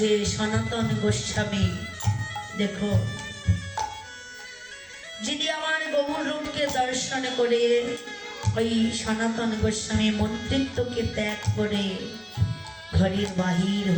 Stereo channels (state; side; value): identical; both; correlation 1.00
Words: সনাতন গোস্বামী। দেখো, যিনি আমার গৌর রূপকে দর্শন করে ওই সনাতন গোস্বামী মন্ত্রিত্বকে ত্যাগ করে ঘরের বাহির